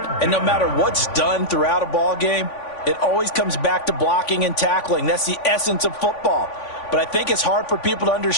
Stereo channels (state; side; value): late; right; 3.5 ms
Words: And no matter what's done throughout a ball game, it always comes back to blocking and tackling. That's the essence of football. But I think it's hard for people to